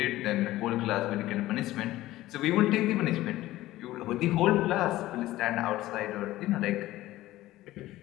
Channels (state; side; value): quieter; right; 16.1 dB